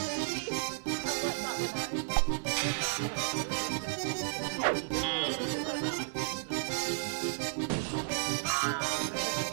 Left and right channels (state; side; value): silent; left; 56 dB below the other